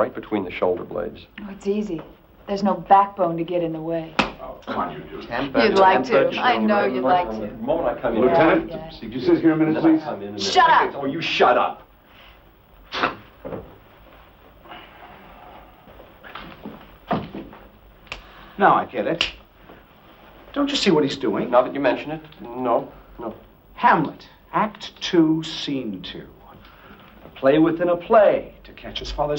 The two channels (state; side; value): identical; both; correlation 1.00